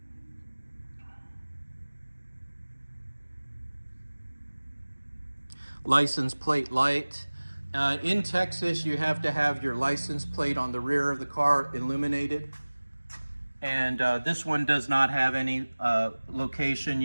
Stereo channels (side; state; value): both; inverted; correlation -1.00